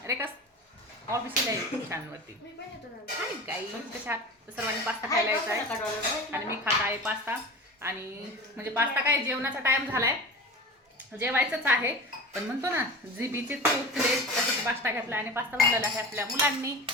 रेखा ऑफिसला यूट्यूब चॅनलवरती. आणि काही कशात सर्वांनी पास्ता खायला यायचा आहे आणि मी खात आहे पास्ता. आणि म्हणजे पास्ता काय जेवणाचा टाइम झालाय, जेवायचंच आहे, पण म्हणतो ना जिबीचे चोचले तसंच पास्ता घेतला आणि पास्ता बनवलेला आहे आपल्या मुलांनी.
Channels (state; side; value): normal; both; correlation 0.32